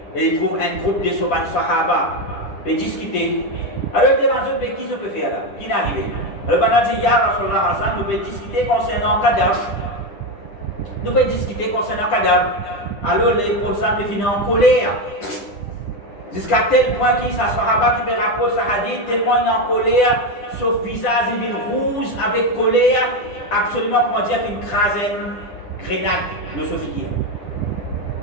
et ils trouvent un groupe de Sahaba pour discuter. Alors, ils demandent qui se peut faire là, qui est arrivé. Alors, pendant que Ya Rasulallah, nous pouvons discuter concernant le cadavre. Nous pouvons discuter concernant le cadavre. Alors, les professeurs me finissent en colère. Jusqu'à tel point qu'il y a un Sahaba qui me rapporte ça hadith, tellement il est en colère, son visage il est rouge avec colère, absolument, comment dire, une grenade, le Sophie.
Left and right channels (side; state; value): right; late; 10 ms